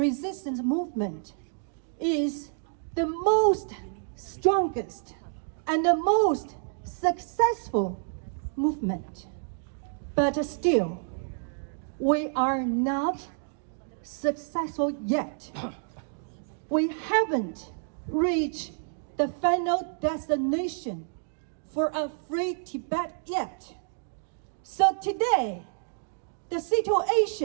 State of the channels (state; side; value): silent; left; digital silence